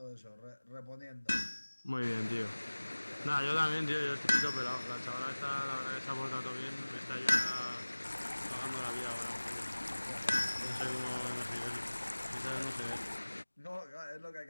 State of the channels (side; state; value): both; inverted; correlation -1.00